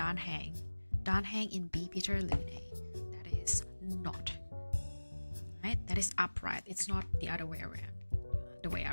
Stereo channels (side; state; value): both; inverted; correlation -1.00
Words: Danhang in B Peter Lune. That is not. Right? That is upright. It's not the other way around. The way I